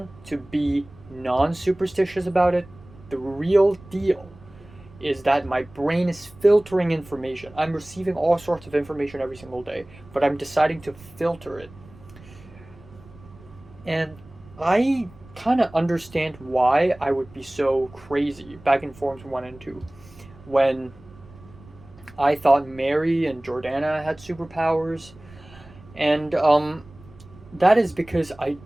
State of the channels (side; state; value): right; noise; rumble, 22 dB below the sound